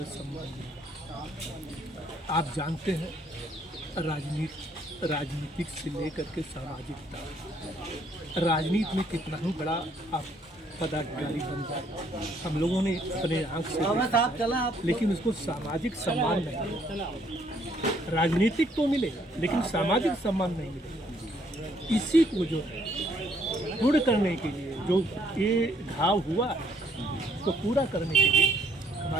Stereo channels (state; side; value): normal; both; correlation 0.66